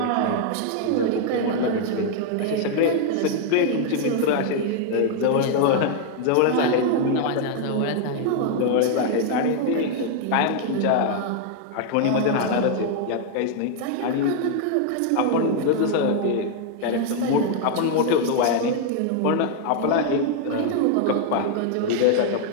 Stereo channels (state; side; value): different; both; correlation 0.00